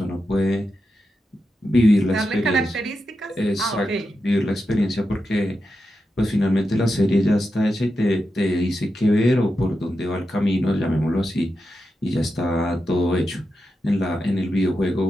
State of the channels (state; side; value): normal; both; correlation 0.88